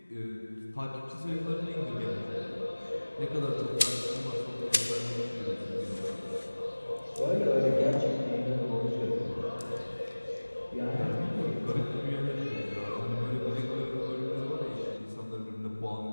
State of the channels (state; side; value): inverted; both; correlation -1.00